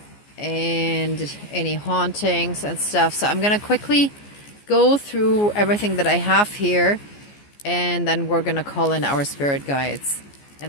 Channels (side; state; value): right; late; 14 ms